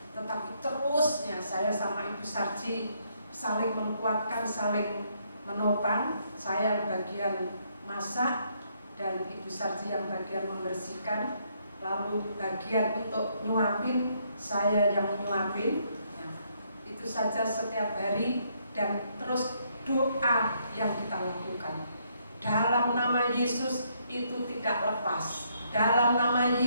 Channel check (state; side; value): inverted; both; correlation -0.72